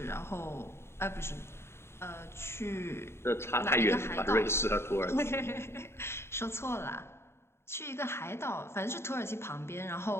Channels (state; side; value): late; right; 0.12 ms